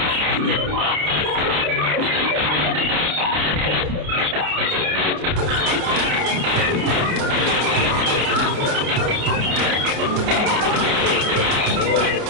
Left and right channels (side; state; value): left; late; 29 ms